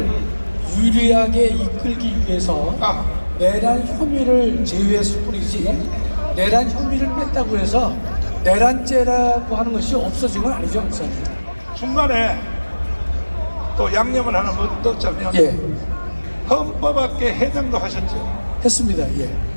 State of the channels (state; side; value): inverted; both; correlation -1.00